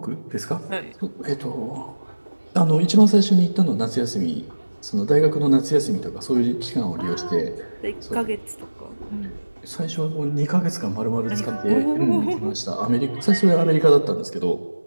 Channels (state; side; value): inverted; both; correlation -1.00